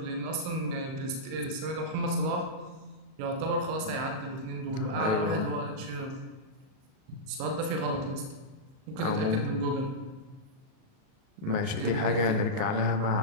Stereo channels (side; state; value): left; late; 38 ms